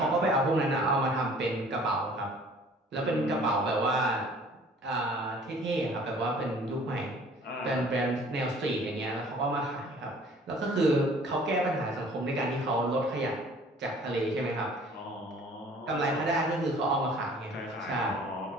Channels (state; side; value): normal; both; correlation 0.52